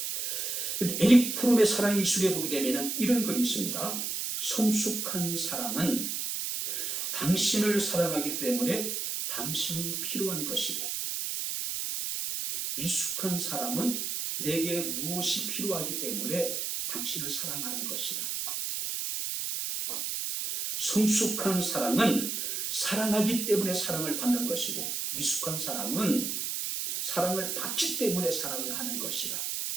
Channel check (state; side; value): noise; right; hiss, 2 dB below the sound